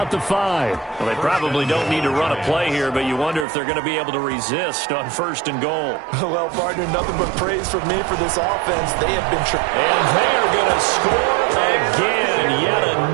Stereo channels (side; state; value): left; drops out; at 3.5 s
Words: the 5. Well, they probably don't need to run a play here, but you wonder if they're going to be able to resist on 1st and goal. Well, partner, nothing but praise from me for this offense. They have been... And they are going to score again. Yet